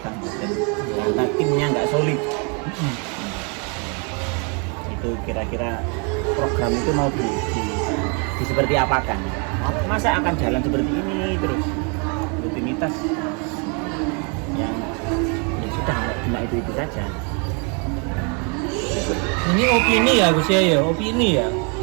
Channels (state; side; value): quieter; left; 35.6 dB